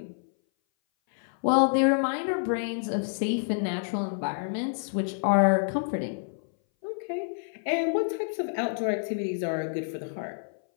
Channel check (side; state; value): right; silent; 59 dB below the other